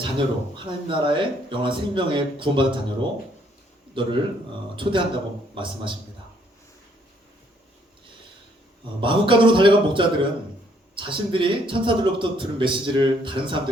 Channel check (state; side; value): normal; both; correlation 0.67